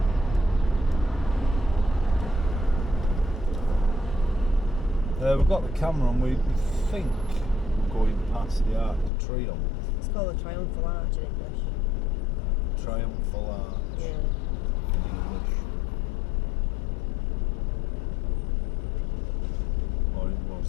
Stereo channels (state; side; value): drops out; right; at 9.1 s